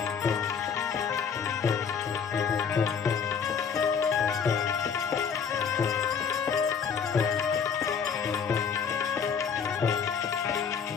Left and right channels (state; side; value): quieter; right; 6.6 dB